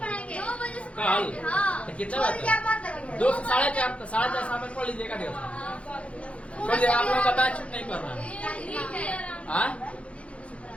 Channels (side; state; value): right; late; 0.062 ms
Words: कल, तो कितना बजे? 2 से 4:30 शाम में पढ़ लीजिएगा। देखिए आप लोगों का बैच छुट्टी नहीं कर रहा है।